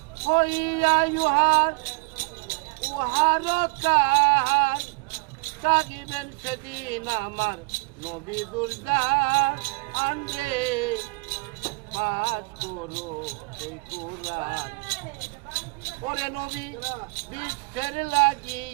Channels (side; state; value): left; quieter; 30.8 dB